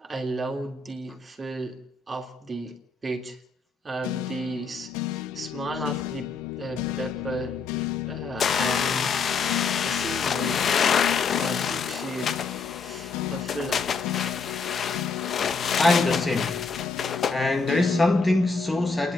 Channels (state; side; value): quieter; right; 4.4 dB